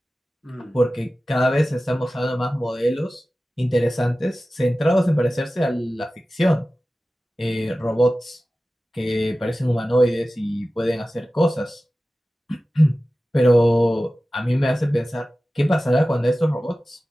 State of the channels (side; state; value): both; normal; correlation 0.96